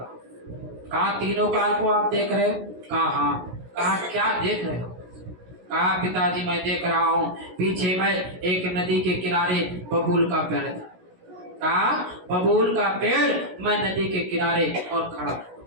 हूँ। कहा तीनों काल को आप देख रहे हो? कहा हाँ। कहा क्या देख रहे हो? कहा पिताजी मैं देख रहा हूँ, पीछे मैं एक नदी के किनारे बबूल का पेड़ था। कहा बबूल का पेड़, मैं नदी के किनारे और खड़ा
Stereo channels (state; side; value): late; left; 16 ms